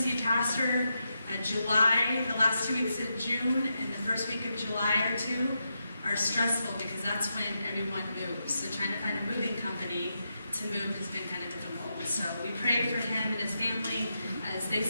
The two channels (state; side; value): inverted; both; correlation -0.85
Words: pastor, July, the last 2 weeks of June and the first week of July or 2 are stressful because that's when everyone moves. So trying to find a moving company to move has been kind of difficult. So we pray for him and his family as they